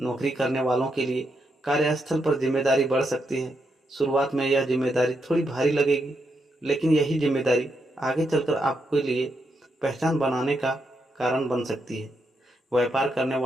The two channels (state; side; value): normal; both; correlation 0.81